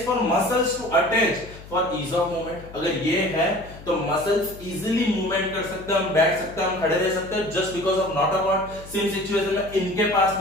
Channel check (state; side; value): noise; left; hum, 17 dB below the sound